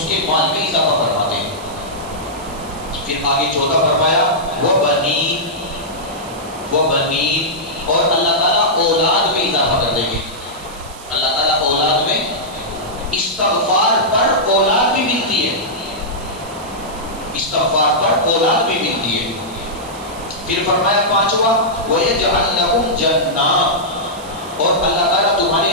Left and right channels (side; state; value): right; noise; hiss, 18 dB below the sound